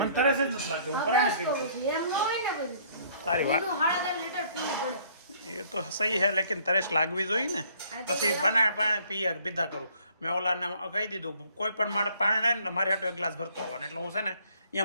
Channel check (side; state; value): both; inverted; correlation -0.60